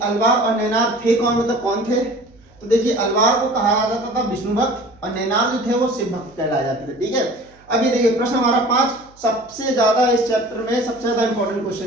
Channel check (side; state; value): right; noise; hum, 29 dB below the sound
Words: अलवार और नैनार थे कौन, मतलब कौन थे। तो देखिए, अलवार को कहा जाता था विष्णु भक्त और नैनार जो थे वो शिव भक्त कहलाए जाते थे। ठीक है, अब ये देखिए प्रश्न हमारा 5 सबसे ज्यादा इस चैप्टर में सबसे ज्यादा इंपॉर्टेंट